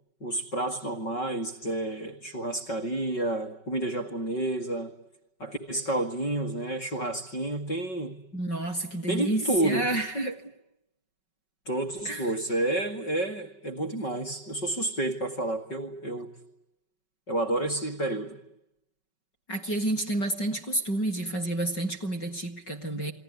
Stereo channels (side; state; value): right; late; 5.3 ms